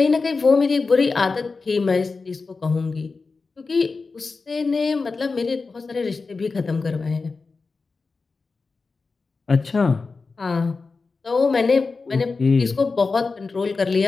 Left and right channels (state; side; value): quieter; right; 4.2 dB